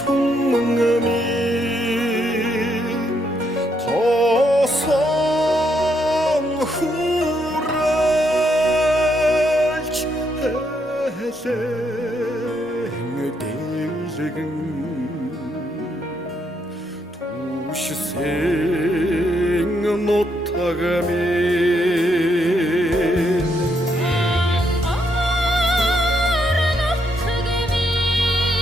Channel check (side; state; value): both; normal; correlation 0.76